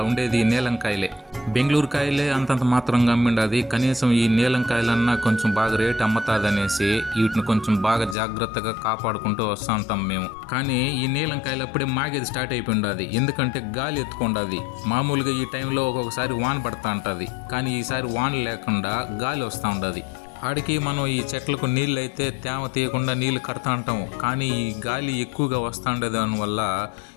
ఉండేది నీలంకాయలే. బెంగళూరు కాయలే అంతంత మాత్రంగా అమ్మిండది. కనీసం ఈ నీలంకాయలన్నా కొంచెం బాగా రేటు అమ్ముతాదనేసి వీటిని కొంచెం బాగా జాగ్రత్తగా కాపాడుకుంటూ వస్తూ ఉంటాం మేము. కానీ ఈ నీలంకాయలు అప్పుడే మాగేది స్టార్ట్ అయిపోయింది. ఎందుకంటే గాలి ఎత్తుకుంటుంది. మామూలుగా ఈ టైంలో ఒక్కొక్కసారి వాన పడుతూ ఉంటుంది, కానీ ఈసారి వాన లేకుండా గాలి వస్తూ ఉంటుంది. ఆడికి మనం ఈ చెట్లకు నీళ్ళు అయితే తేమ తీయకుండా నీళ్ళు కడతా ఉంటాము, కానీ ఈ గాలి ఎక్కువగా వస్తూ ఉండేది దానివల్ల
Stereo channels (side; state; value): right; drops out; at 8.2 s